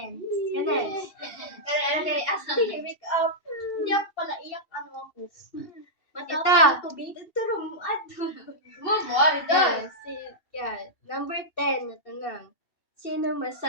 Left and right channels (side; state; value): right; late; 2.7 ms